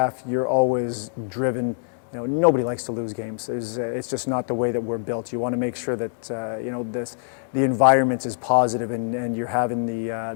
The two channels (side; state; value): right; silent; digital silence